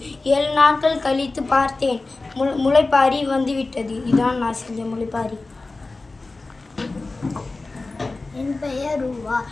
7 நாட்கள் கழித்து பார்த்தேன், முளைப்பாரி வந்துவிட்டது. இதுதான் நான் செஞ்ச முளைப்பாரி. என் பெயர் ரூவா.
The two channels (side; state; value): right; quieter; 3.4 dB